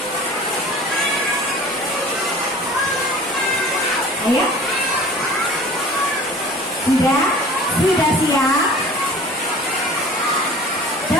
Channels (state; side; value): normal; both; correlation 0.44